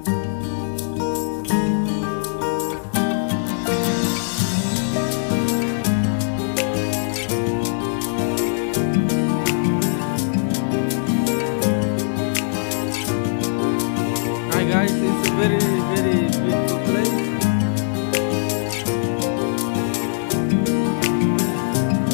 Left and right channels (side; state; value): right; silent; digital silence